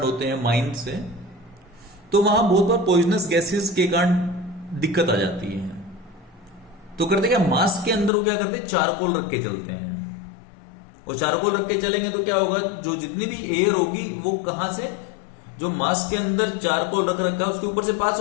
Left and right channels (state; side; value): drops out; right; at 8.1 s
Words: होते हैं माइन से, तो वहां बहुत बार पॉइजनस गैसेस के कारण दिक्कत आ जाती है। तो करते क्या, मास्क के अंदर वो क्या करते हैं, चारकोल रख के चलते हैं। और चारकोल रख के चलेंगे तो क्या होगा, जो जितनी भी एयर होगी वो कहां से, जो मास्क के अंदर चारकोल रख रखा है उसके ऊपर से पास